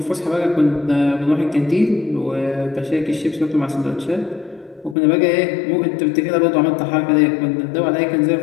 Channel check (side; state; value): right; drops out; at 5.0 s